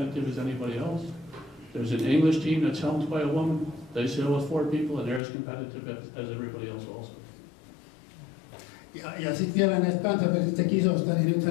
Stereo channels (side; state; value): right; drops out; at 5.2 s